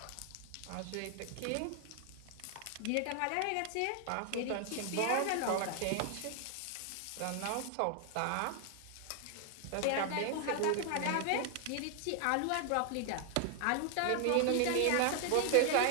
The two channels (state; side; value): different; both; correlation 0.00